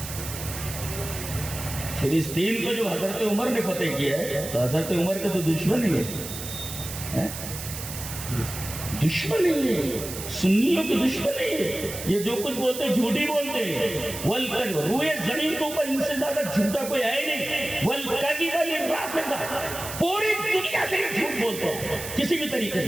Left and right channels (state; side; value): noise; right; hiss, 9 dB below the sound